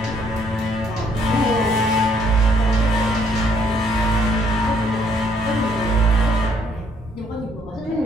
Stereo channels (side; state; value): both; normal; correlation 0.67